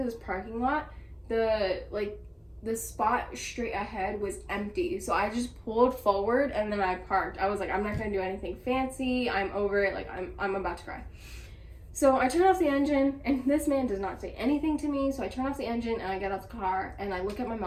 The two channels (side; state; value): both; identical; correlation 1.00